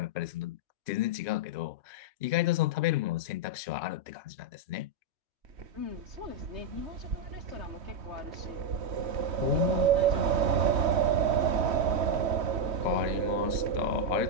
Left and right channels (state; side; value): late; left; 3.1 ms